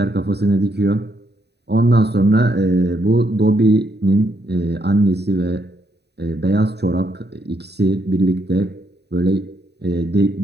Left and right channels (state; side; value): late; left; 0.48 ms